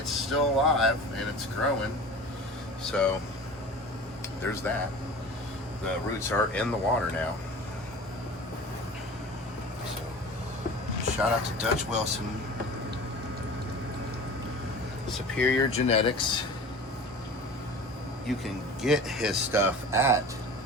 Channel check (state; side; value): normal; both; correlation 0.37